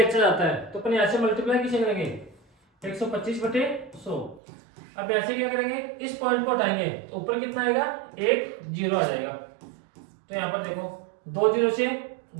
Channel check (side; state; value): left; drops out; at 4.4 s